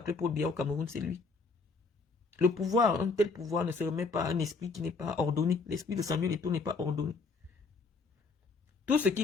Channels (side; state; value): right; quieter; 4.3 dB